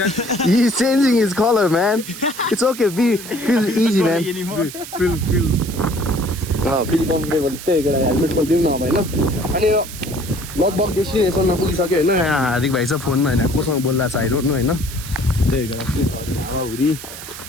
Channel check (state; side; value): noise; right; hiss, 12 dB below the sound